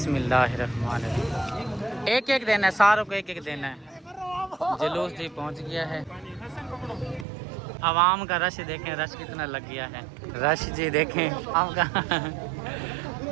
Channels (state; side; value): drops out; left; at 7.2 s